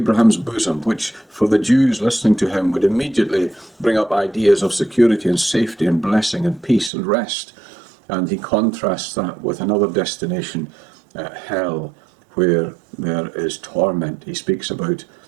bosom, which for the Jews listening to him would immediately bring up ideas of security and safety and blessing and peace and rest. And he contrasts that with another destination, hell, where there is torment. He speaks about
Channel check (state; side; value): drops out; left; at 6.9 s